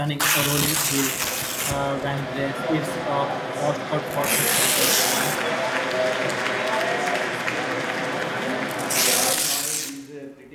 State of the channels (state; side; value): identical; both; correlation 1.00